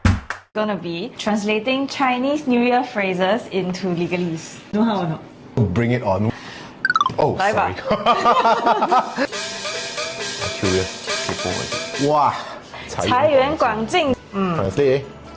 Gonna be translating Chinese New Year phrases into Legalese. Know how or not? Bring it on. Oh, Bye sorry. I'm curious. Wow. 财源广进. Translate.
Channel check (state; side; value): identical; both; correlation 1.00